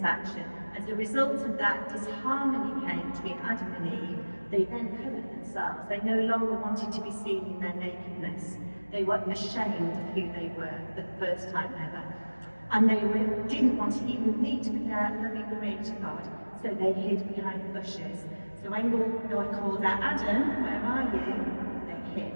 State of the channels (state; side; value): inverted; both; correlation -1.00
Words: action. As a result of that, disharmony came between Adam and Eve. They then covered themselves. They no longer wanted to be seen in their nakedness. They were ashamed of who they were for the first time ever. And they didn't want to even meet with their loving creator God, so they hid behind the bushes. So when God called out, Adam, where are you? They hid.